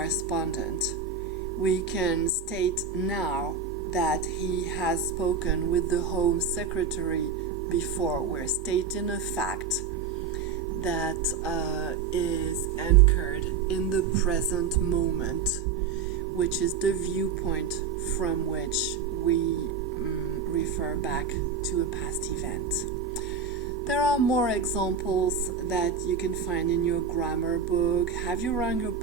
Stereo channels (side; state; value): left; quieter; 5.9 dB